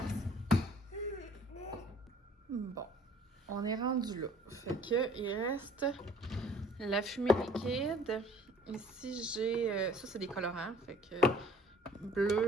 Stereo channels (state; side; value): normal; both; correlation 0.54